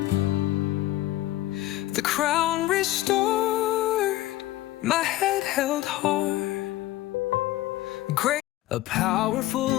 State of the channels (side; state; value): right; quieter; 16.0 dB